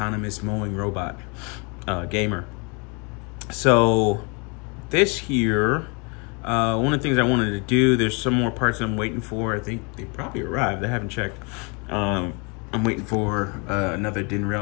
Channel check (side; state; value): right; quieter; 32.5 dB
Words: mowing robot gamer. So this here, one of the things I wanted to do, there's some more parts I'm waiting for. I think they probably arrived. I haven't checked. I'm waiting for another DIN